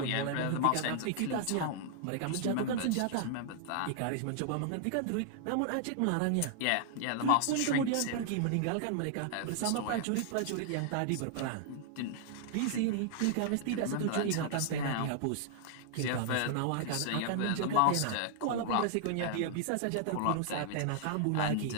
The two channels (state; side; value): different; both; correlation -0.01